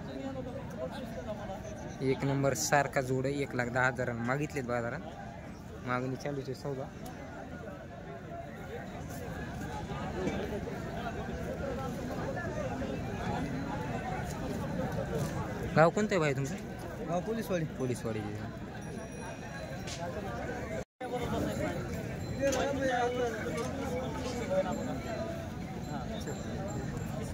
एक नंबर सारखा जोड आहे. 1,10,000 मागितलेत बाजारात. मागणी चालूच आहे सौदा. गाव कोणतं आहे भाई तुमचं? गाव पोलीसवाडी. पोलीसवाडी.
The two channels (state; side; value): identical; both; correlation 1.00